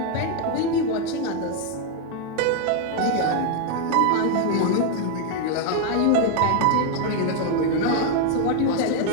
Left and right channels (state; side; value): different; both; correlation 0.01